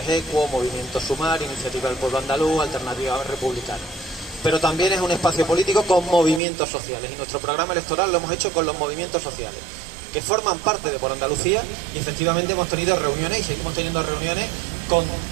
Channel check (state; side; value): drops out; left; at 6.4 s